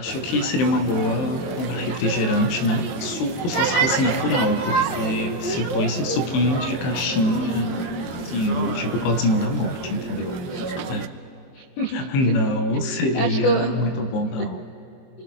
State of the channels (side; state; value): right; late; 23 ms